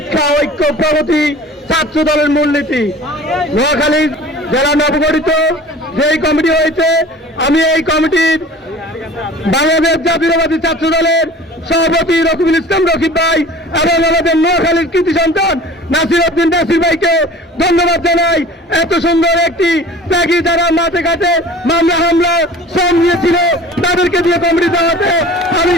ঐক্য প্রগতি ছাত্র দলের মূলনীতি। নোয়াখালী জেলা নবগঠিত যেই কমিটি হয়েছে, আমি এই কমিটির বাংলাদেশ জাতীয়তাবাদী ছাত্র দলের সভাপতি রকিবুল ইসলাম রকিব ভাই এবং আমাদের নোয়াখালীর কৃতি সন্তান নাসির উদ্দিন নাসির ভাইকে ধন্যবাদ জানাই। এত সুন্দর একটি ত্যাগী যারা মাঠে ঘাটে মামলা হামলা শ্রম নিয়েছিল তাদেরকে দিয়ে কমিটি দেওয়াতে আমি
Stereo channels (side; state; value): both; normal; correlation 0.43